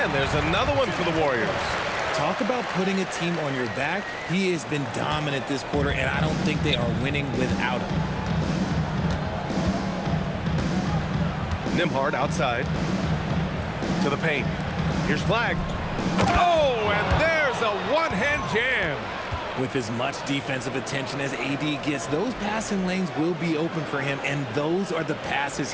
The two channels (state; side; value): identical; both; correlation 1.00